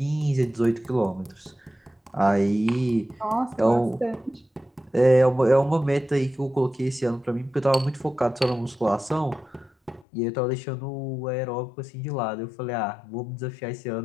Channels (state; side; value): drops out; right; at 10.1 s